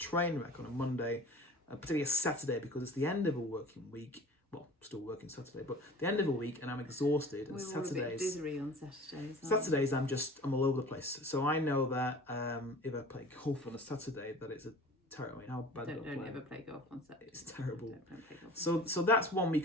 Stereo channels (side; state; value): both; normal; correlation 0.43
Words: wreck on a Monday, particularly a Saturday, because it's the end of a working week. Well, still working Saturday, but the end of a week, and I'm exhausted. And We're all a bit dizzy on Saturdays. I'm all over the place. So I know that if I play golf on a Saturday, that it's a terrible. I mean, how bad Don't ever play golf on Saturday. It's terrible. Don't play golf. So that's one we